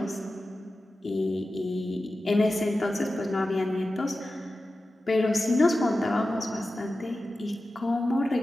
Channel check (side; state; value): both; normal; correlation 0.94